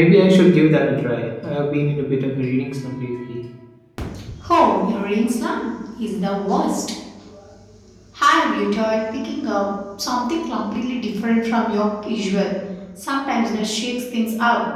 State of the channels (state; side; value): identical; both; correlation 1.00